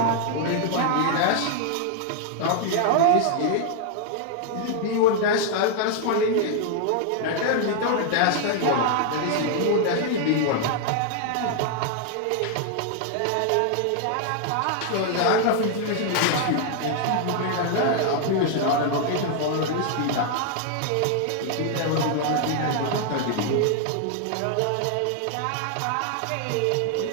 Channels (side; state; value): both; different; correlation 0.00